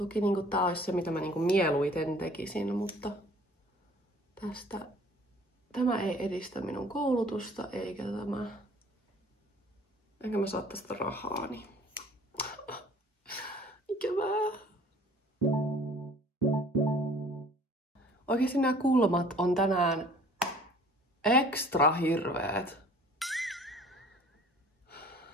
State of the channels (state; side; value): normal; both; correlation 0.51